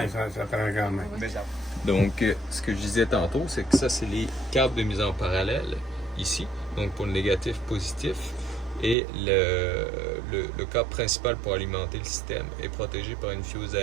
Ça prend quand même. Donc, ce que je disais tantôt, c'est que ça, c'est les câbles de mise en parallèle ici. Donc, pour le négatif, positif. Et le câble principal pour alimenter le système est protégé par une fuse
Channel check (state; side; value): drops out; left; at 9.0 s